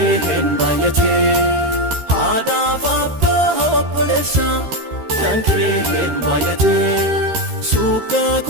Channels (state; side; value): late; left; 13 ms